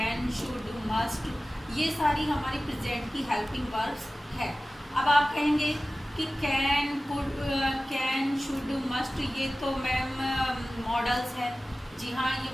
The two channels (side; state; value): both; normal; correlation 0.96